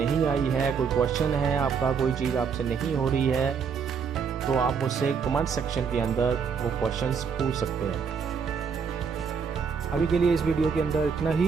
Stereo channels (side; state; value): left; quieter; 6.2 dB